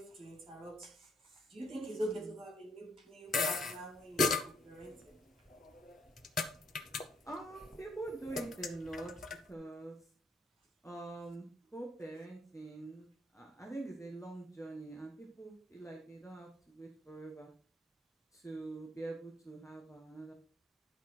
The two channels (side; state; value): both; normal; correlation 0.69